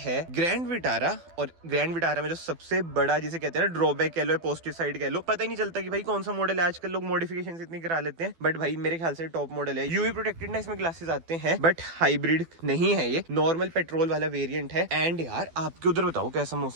ग्रैंड विटारा। और ग्रैंड विटारा में जो सबसे बड़ा जिसे कहते हैं ना ड्रॉबैक कह लो, पॉजिटिव साइड कह लो, पता ही नहीं चलता कि भाई कौन सा मॉडल है। आजकल लोग मॉडिफिकेशन इतनी करा लेते हैं, बट भाई मेरे ख्याल से टॉप मॉडल है। यूवी प्रोटेक्टेड ना इसमें ग्लासेस आते हैं, बट हाइब्रिड नहीं है, ये नॉर्मल पेट्रोल वाला वेरिएंट है। एंड यार आपके उधर बताओ कैसा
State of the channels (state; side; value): late; left; 12 ms